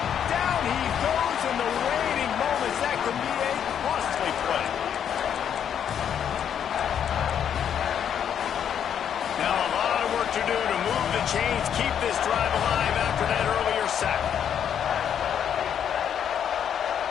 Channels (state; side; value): quieter; right; 8.8 dB